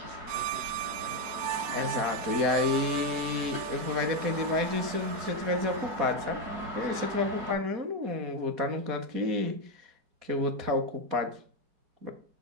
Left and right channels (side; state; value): left; late; 4.2 ms